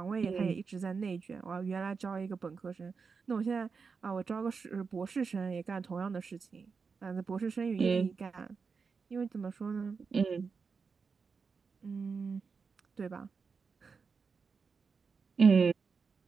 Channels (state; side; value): quieter; left; 5.2 dB